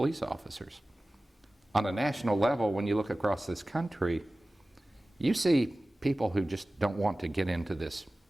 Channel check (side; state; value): both; normal; correlation 0.97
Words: officers. On a national level, when you look across this country, you see people who just don't want to get into this